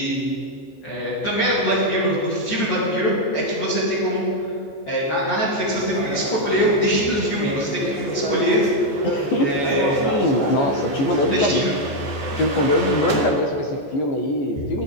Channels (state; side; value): late; right; 14 ms